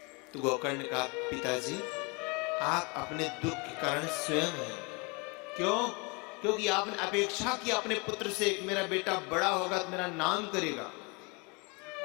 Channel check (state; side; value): quieter; right; 30.1 dB